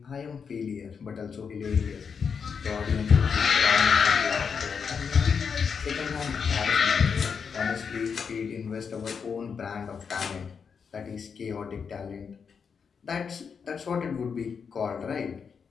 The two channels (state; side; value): quieter; right; 6.2 dB